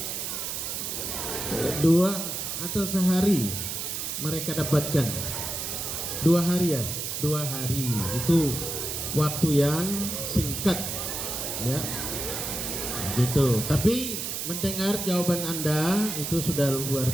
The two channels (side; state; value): right; noise; hiss, 4 dB below the sound